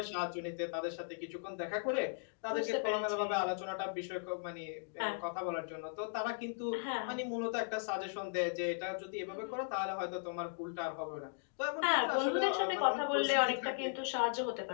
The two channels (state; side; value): silent; right; digital silence